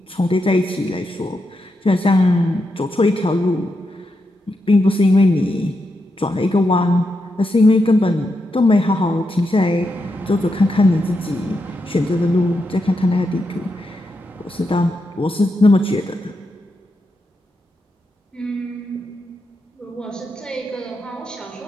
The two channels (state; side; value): normal; both; correlation 0.85